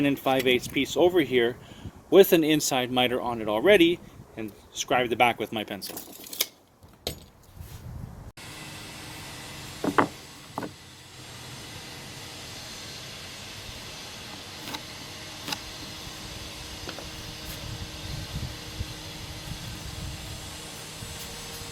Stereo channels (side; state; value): both; identical; correlation 1.00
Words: and 5/8 piece over here with an inside miter on it already and scribe the back with my pencil.